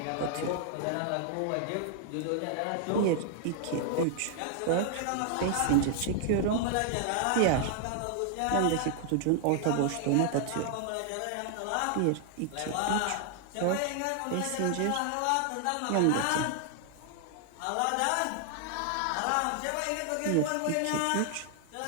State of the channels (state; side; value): different; both; correlation 0.00